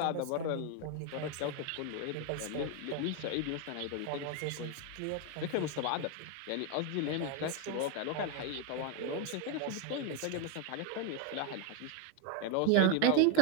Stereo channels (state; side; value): different; both; correlation 0.01